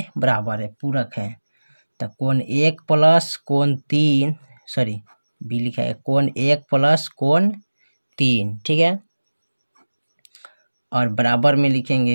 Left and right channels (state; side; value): inverted; both; correlation -1.00